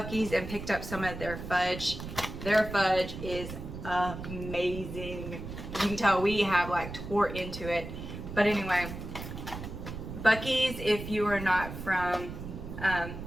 and picked up some of their fudge. Their fudge is amazing. You can tell we have like tore into it. But anyway, Buc-ee's, if you are not from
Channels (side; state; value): right; noise; rumble, 9 dB below the sound